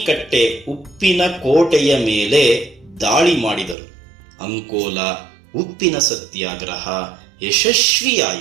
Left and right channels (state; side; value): drops out; left; at 3.8 s